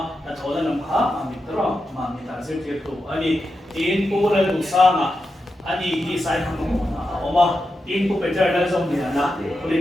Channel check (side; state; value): both; normal; correlation 0.89